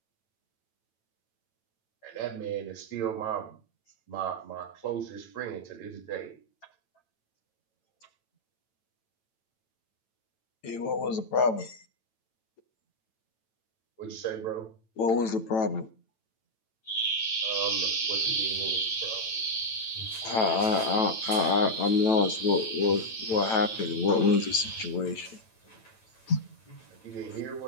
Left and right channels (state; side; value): late; right; 9.0 ms